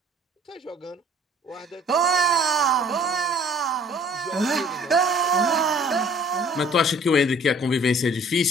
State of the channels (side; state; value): both; normal; correlation 0.54